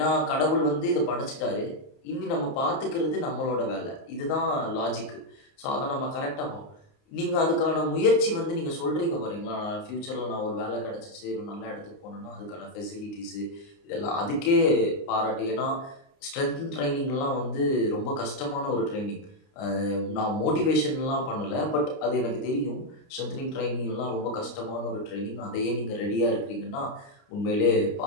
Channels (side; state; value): right; late; 29 ms